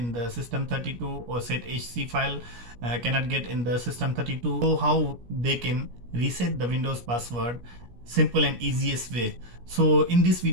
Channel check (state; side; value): late; left; 17 ms